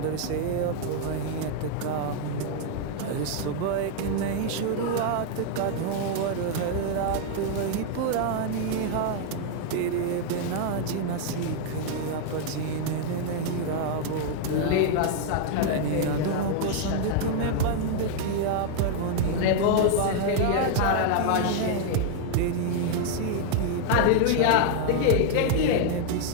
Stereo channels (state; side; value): different; both; correlation 0.00